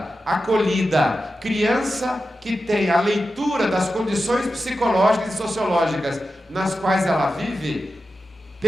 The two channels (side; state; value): both; normal; correlation 0.91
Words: acolhida, criança que tem a leitura das condições psicológicas e sociológicas nas quais ela vive,